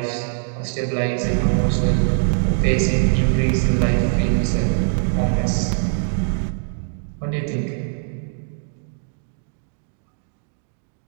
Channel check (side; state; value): left; silent; 64 dB below the other